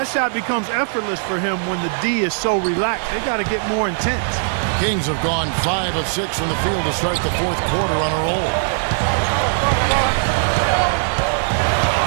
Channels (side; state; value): left; silent; digital silence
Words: shot becomes effortless for him when the D is so relaxed. They got to get more intense. Kings have gone 5 of 6 from the field to start the fourth quarter on a roll.